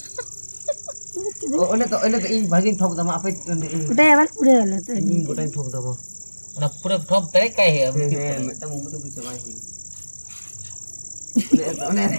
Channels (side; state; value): both; inverted; correlation -1.00